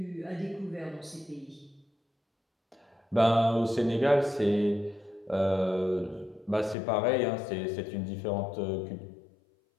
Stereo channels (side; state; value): right; drops out; at 6.8 s